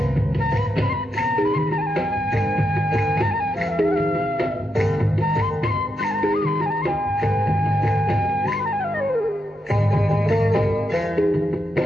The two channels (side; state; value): both; normal; correlation 0.84